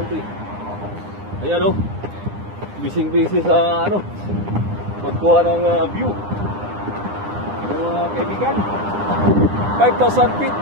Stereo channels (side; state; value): left; late; 9.9 ms